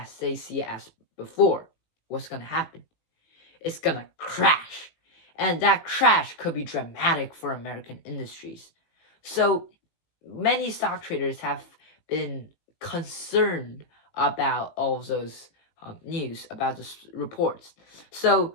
they see it as before? What's gonna happen? It's gonna crash. And that crash could be dramatic for American industries. So many stock traders have been concerned about all of those news, about the reports.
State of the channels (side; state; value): right; late; 18 ms